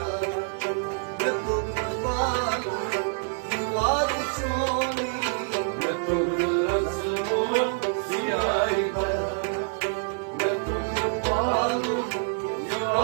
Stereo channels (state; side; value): silent; left; digital silence